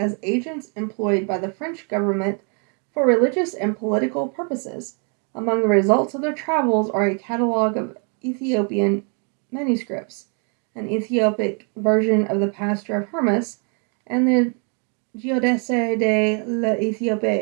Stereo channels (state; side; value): quieter; left; 39.0 dB